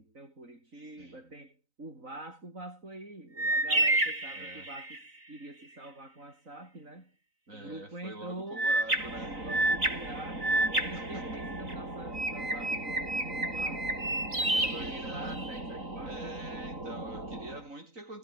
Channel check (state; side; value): late; left; 3.9 ms